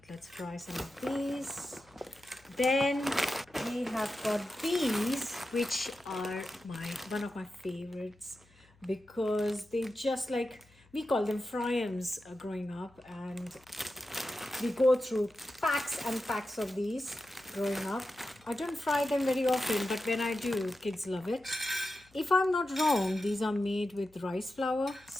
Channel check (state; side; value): noise; left; hum, 30 dB below the sound